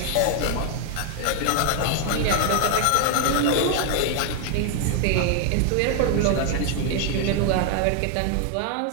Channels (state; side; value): different; both; correlation 0.00